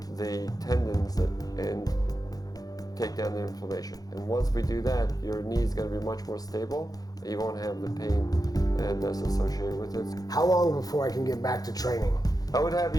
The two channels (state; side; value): late; right; 0.18 ms